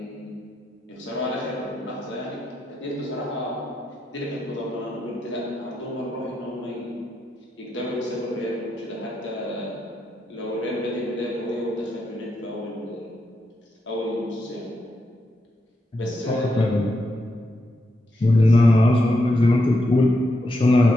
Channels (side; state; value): both; normal; correlation 0.83